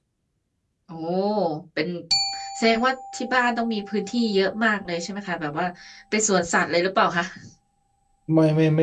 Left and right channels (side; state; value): both; identical; correlation 1.00